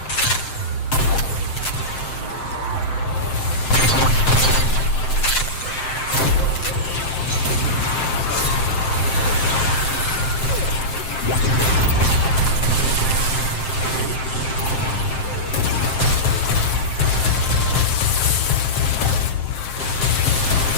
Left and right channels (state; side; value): late; right; 7.7 ms